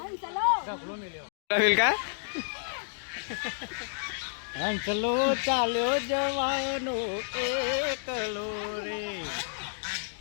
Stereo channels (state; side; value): silent; right; digital silence